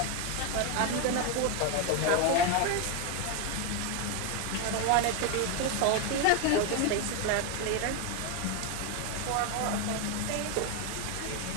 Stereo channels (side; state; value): both; different; correlation 0.01